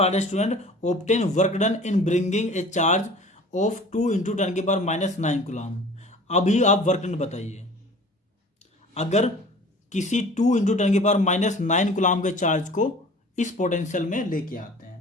है student, obtain work done in bringing a charge of 2 × 10⁻9 coulomb. अभी आप वर्क डन बताइए, अगर किसी 2 × 10⁻9 कूलम के चार्ज को इस पोटेंशियल में लेके आते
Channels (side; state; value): both; normal; correlation 0.45